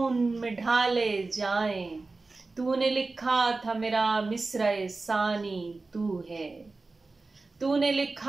में ढाले जाएं। तूने लिखा था मेरा मिसरे सानी तू है, तूने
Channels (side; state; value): left; quieter; 3.6 dB